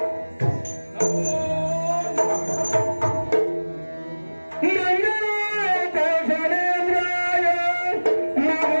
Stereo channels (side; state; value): both; inverted; correlation -1.00